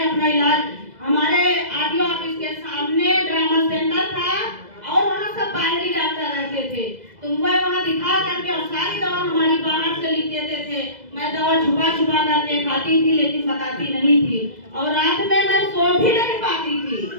अपना इलाज हमारे आरटीओ ऑफिस के सामने ड्रामा सेंटर था और वहाँ सब बाहरी डॉक्टर रहते थे, तो मैं वहाँ दिखा करके और सारी दवा हमारी बाहर से लिख देते थे। मैं दवा छुपा छुपा करके खाती थी लेकिन बताती नहीं थी और रात में मैं सो भी नहीं पाती थी।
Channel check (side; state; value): left; late; 2.0 ms